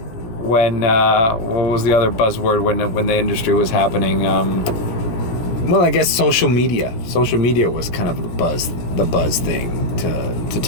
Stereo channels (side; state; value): right; late; 18 ms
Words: when what was the other buzzword when the industry was happening? Well, I guess social media. Social media was kind of the buzz thing to